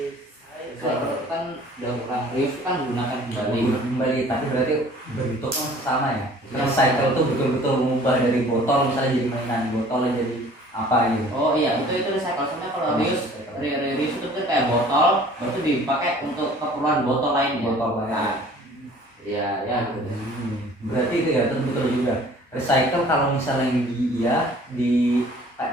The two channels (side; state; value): both; normal; correlation 0.51